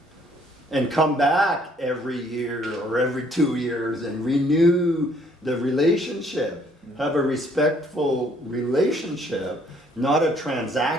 And come back every year or every 2 years and renew the relationship. Have a respectful relationship, not a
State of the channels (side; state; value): both; normal; correlation 0.64